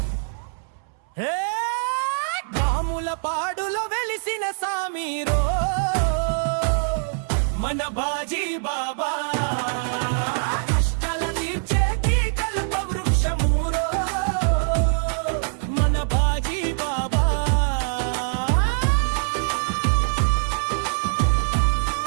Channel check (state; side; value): silent; left; 63 dB below the other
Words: హే గాములపాడులో వెలిసిన సామీరో మన బాజీ బాబా కష్టాల తీర్చేటి కల్ప వృక్షమురో మన బాజీ బాబా